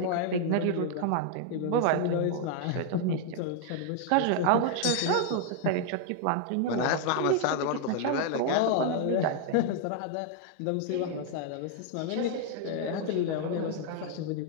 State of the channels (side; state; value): both; different; correlation 0.00